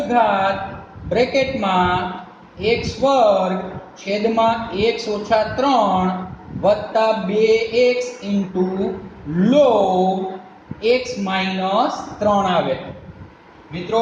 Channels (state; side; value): identical; both; correlation 1.00